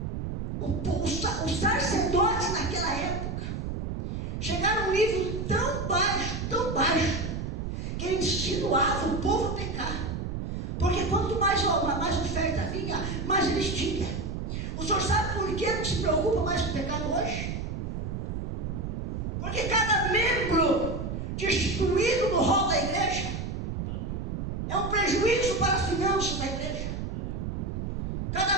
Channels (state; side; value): noise; right; rumble, 4 dB below the sound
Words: Os sacerdotes naquela época chegaram a um nível tão baixo, que eles insinuavam o povo a pecar. Porque quanto mais oferta vinha, mais eles tinham. O senhor sabe por que não se preocupa mais com o pecado hoje? Porque cada membro destituído no rol da igreja é um prejuízo para as finanças da igreja.